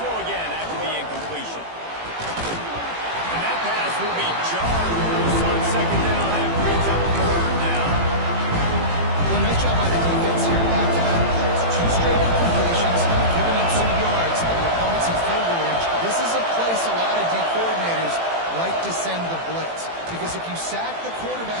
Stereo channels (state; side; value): late; left; 18 ms